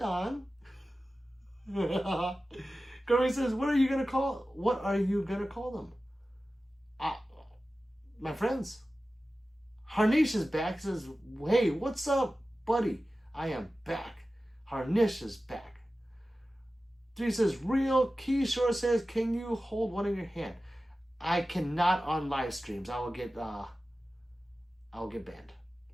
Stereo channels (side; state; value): both; normal; correlation 0.95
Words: Gary says, what are you gonna call them? My friends. Harnish is back. Says, hey, what's up, buddy? I am back. Harnish is back. 3 says, real. Keyshore says, can you hold one in your hand? I cannot on live streams. I will get banned.